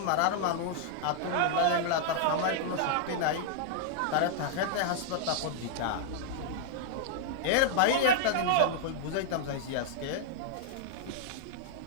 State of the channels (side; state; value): both; different; correlation -0.01